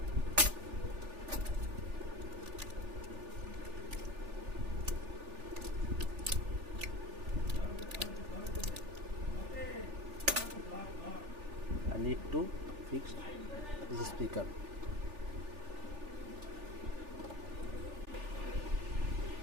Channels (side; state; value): left; late; 3.4 ms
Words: I need to fix this speaker.